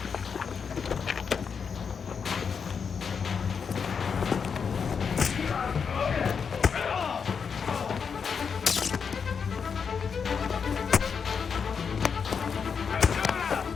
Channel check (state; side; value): quieter; right; 6.2 dB